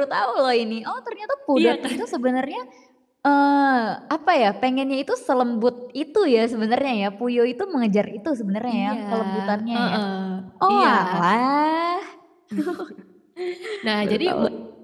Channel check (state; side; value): identical; both; correlation 1.00